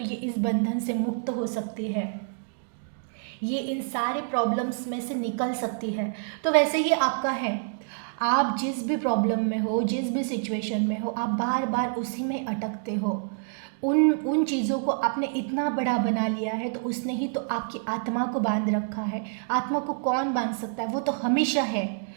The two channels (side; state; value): left; silent; digital silence